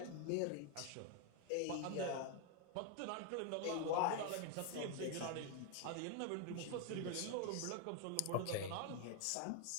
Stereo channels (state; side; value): different; both; correlation 0.01